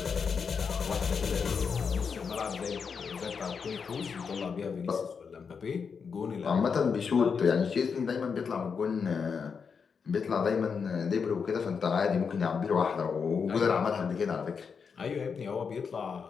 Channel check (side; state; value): right; quieter; 6.0 dB